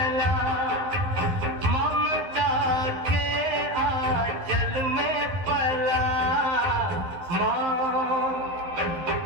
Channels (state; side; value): late; left; 11 ms